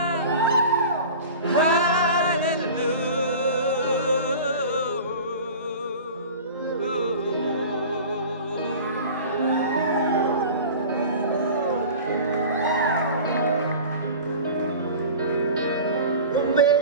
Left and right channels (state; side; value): inverted; both; correlation -0.37